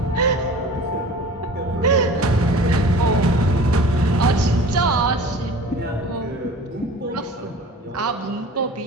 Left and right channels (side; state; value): both; normal; correlation 0.41